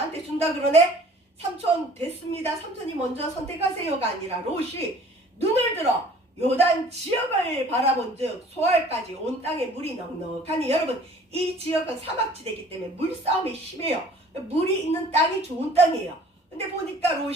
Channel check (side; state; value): both; normal; correlation 0.51